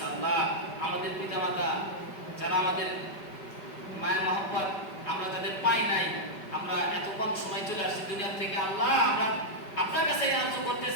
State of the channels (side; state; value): right; late; 5.2 ms